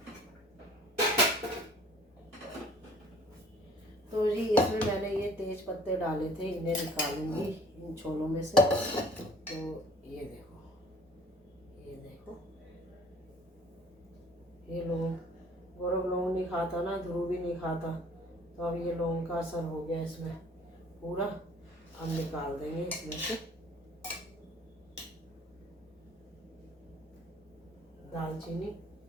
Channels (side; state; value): both; normal; correlation 0.52